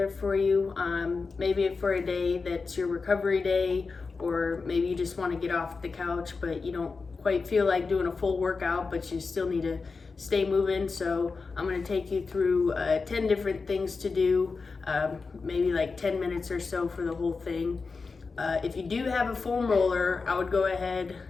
for you. Maybe for a day that's your recovery day, or maybe you just want to get off the couch but you don't quite feel like doing a full workout, but you still need to stay moving. So I'm gonna take you through 10 different things to do, maybe like 10 minutes or so for the whole thing. If you do have a foam roller, I would go ahead,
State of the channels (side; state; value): right; quieter; 4.5 dB